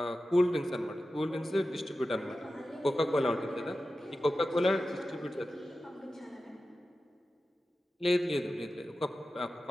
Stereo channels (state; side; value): normal; both; correlation 0.94